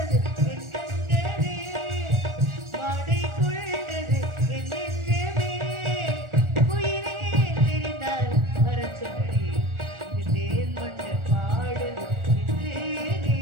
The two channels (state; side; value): late; left; 1.4 ms